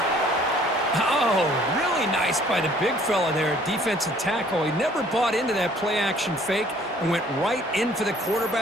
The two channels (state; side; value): normal; both; correlation 0.57